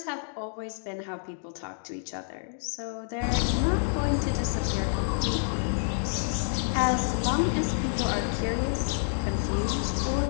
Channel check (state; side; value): silent; right; digital silence